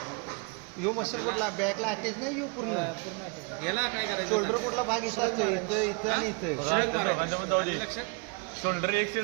यो मसल कुठला बॅकला अटॅच नाही यो पूर्ण याला काय करायचं? शोल्डर कुठला भाग इथं असतो? इथं आणि इथं. शिरक मारायचं. आलं लक्षात? शोल्डर एक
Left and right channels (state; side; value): quieter; left; 30.7 dB